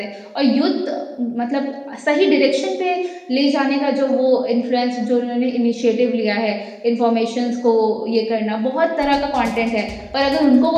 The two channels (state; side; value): identical; both; correlation 1.00